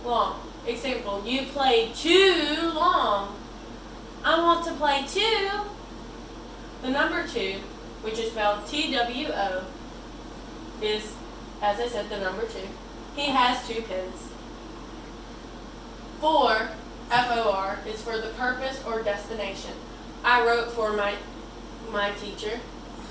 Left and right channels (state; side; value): identical; both; correlation 1.00